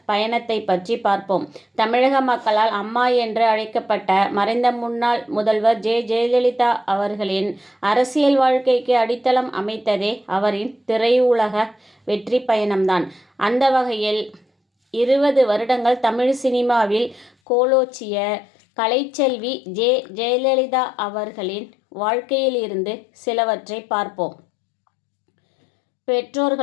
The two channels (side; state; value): right; drops out; at 17.3 s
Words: பயணத்தை பற்றி பார்ப்போம். தமிழக மக்களால் அம்மா என்று அழைக்கப்பட்ட மறைந்த முன்னாள் முதல்வர் ஜெயலலிதா அவர்களின் அரசியல் வாழ்க்கைக்கு அடித்தளம் அமைத்ததே அவரின் திரையுலக வெற்றி பயணம்தான். அந்த வகையில் 20 வருடங்கள் தமிழ் சினிமாவில் கோலோச்சிய கலைச்செல்வி ஜெயலலிதா அவர்களின் வாழ்க்கையில் இருந்து சிலவற்றை பார்ப்போம்.